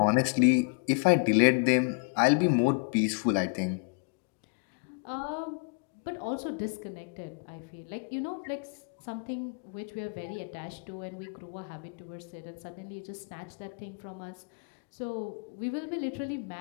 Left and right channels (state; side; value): quieter; right; 38.1 dB